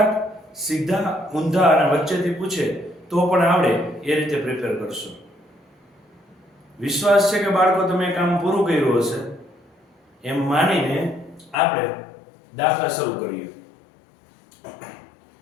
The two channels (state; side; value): drops out; right; at 11.6 s